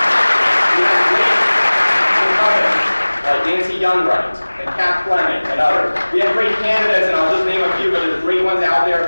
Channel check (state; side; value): inverted; both; correlation -1.00